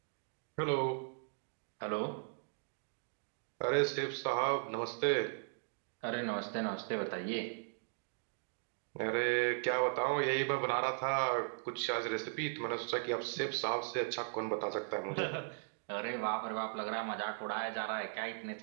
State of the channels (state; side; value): silent; left; digital silence